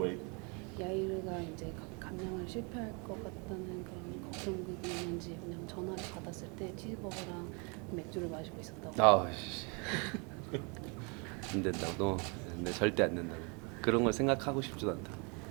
야이르가 이제 감량을 실패할 것 같다는 그런 걱정이 있는지 왜냐면 전화를 받았을 때 치즈버거랑 맥주를 마시고 있었다고. 안 된다고. 네, 절대 안 된다고. 그런 걸 생각하고 싶지도 않다.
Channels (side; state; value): left; quieter; 32.8 dB